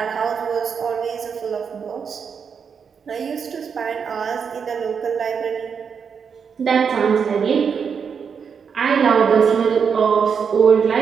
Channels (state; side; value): quieter; left; 6.5 dB